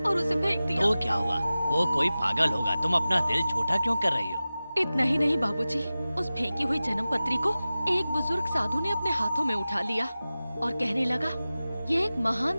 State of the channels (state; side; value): inverted; both; correlation -0.96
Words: और उसे फेंक दिया। तो क्या हुआ? वो कोई पागल होगा, तुम अपना दिल छोटा क्यों कर रही हो? इतना ही नहीं बाबूजी, उस फेंकी हुई जन्म पत्री को एक बुजुर्ग साधु ने अपने हाथों में उठा लिया और कहने लगा, ये एक